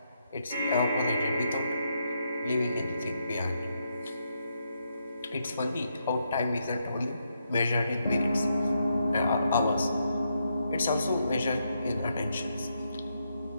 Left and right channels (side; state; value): both; inverted; correlation -0.80